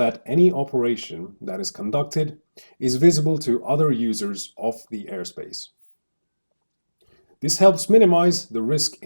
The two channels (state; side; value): inverted; both; correlation -1.00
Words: any operation that is conducted is visible to other users of the airspace. This helps minimize the risk